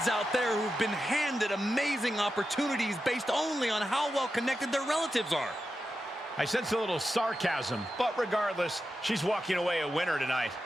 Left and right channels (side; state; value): both; normal; correlation 0.90